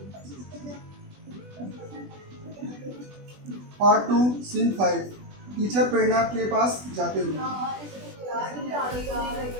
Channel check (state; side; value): late; left; 20 ms